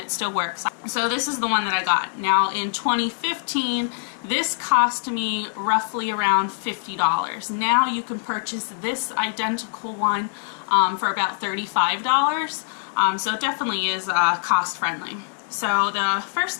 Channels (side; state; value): right; silent; digital silence